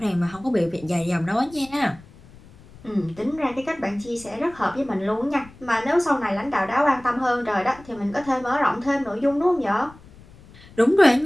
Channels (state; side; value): noise; left; rumble, 22 dB below the sound